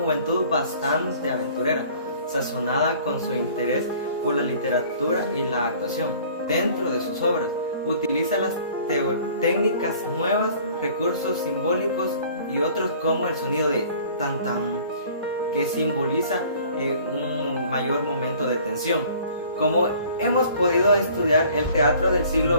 bastante aventurera, sazonada con su interés por la literatura y la actuación. Dentro de sus obras, utiliza las técnicas nuevas, recursos simbólicos y otros como el sonido de tan tan, que simboliza un mayor momento de tensión. Como hemos podido estudiar, el teatro del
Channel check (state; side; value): inverted; both; correlation -0.51